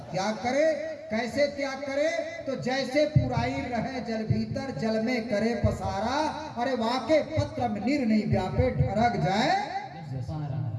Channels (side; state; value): both; identical; correlation 1.00